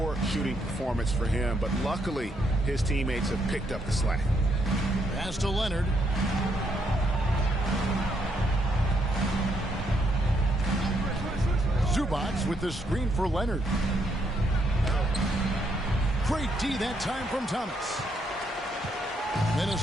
shooting performance for him. But luckily, his teammates have picked up the slack. Pass to Leonard. Zubac with the screen for Leonard. Great D that time from Thomas.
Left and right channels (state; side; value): normal; both; correlation 0.74